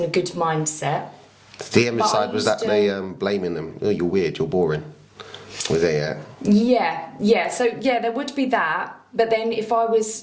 a good mindset. The envy side was that they blaming them. Oh, you're weird, you're boring. Was there, Yeah. So, yeah, there would be that. But then if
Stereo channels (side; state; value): both; identical; correlation 1.00